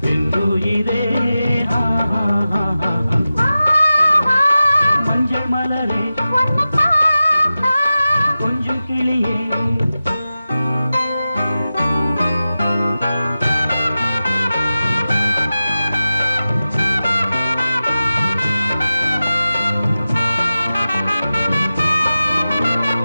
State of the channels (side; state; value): both; inverted; correlation -0.94